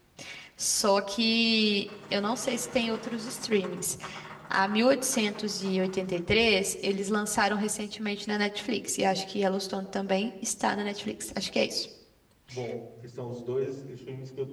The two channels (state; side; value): identical; both; correlation 1.00